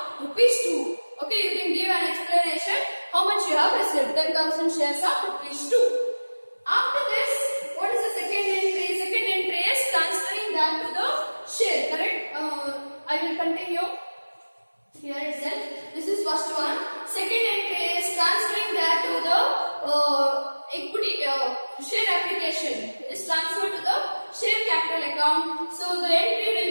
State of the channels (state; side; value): inverted; both; correlation -1.00